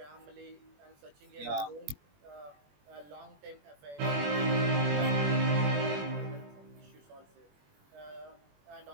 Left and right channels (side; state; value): left; late; 21 ms